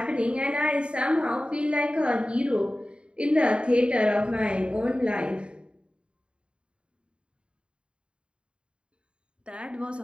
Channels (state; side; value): late; left; 0.054 ms